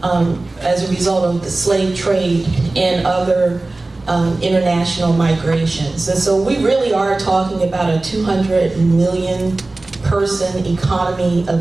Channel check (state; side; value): quieter; left; 3.1 dB